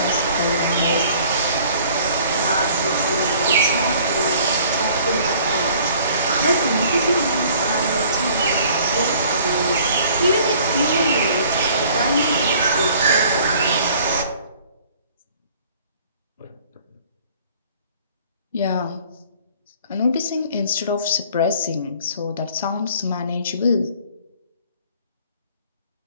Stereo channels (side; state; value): both; inverted; correlation -0.54